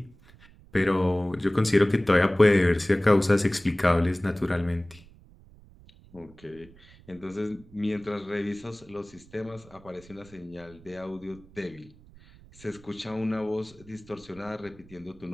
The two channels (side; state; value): right; noise; rumble, 24 dB below the sound